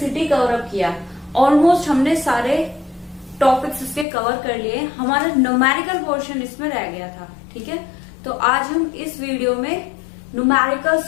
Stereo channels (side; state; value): right; drops out; at 4.0 s